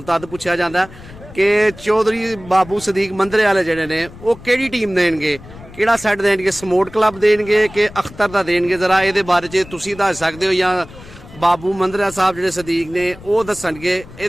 ਤਦ ਪੁੱਛਿਆ ਜਾਂਦਾ कि चौधरी बाबू सदीक मंदरे वाले जड़े ने वो केड़ी टीम देंगे केड़ा सैट देंगे समोट क्लब देंगे कि अख्तर दा देंगे जरा ये बारे च तुसीं दस सकते हो या बाबू मंदरा साहब जो सदीक ने वो दसणगे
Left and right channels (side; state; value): left; noise; rumble, 18 dB below the sound